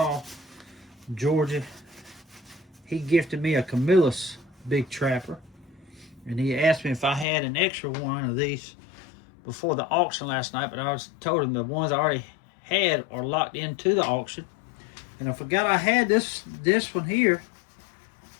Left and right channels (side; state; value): right; drops out; at 7.2 s